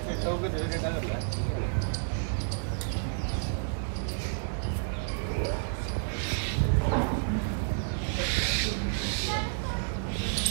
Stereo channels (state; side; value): silent; left; 57 dB below the other